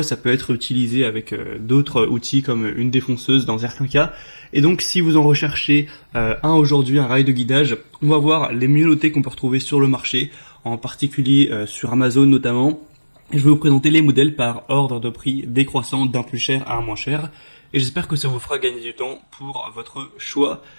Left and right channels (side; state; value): both; inverted; correlation -1.00